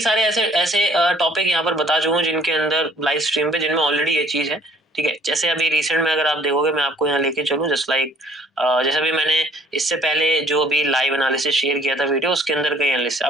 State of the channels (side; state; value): both; normal; correlation 0.56